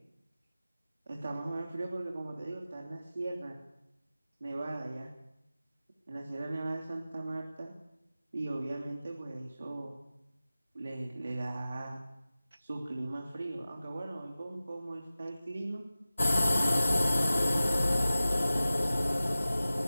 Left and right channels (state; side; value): inverted; both; correlation -0.95